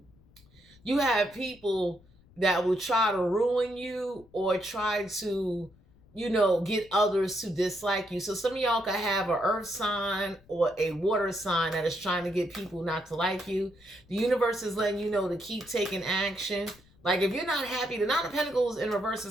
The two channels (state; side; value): noise; left; rumble, 28 dB below the sound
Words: you have people that will try to ruin you or try to, you know, get others to dislike you. So some of y'all could have an earth sign or a water sign that is trying to get people not to like you. The universe is letting you know to keep taking action. Like if you're not happy, the Nine of Pentacles in reverse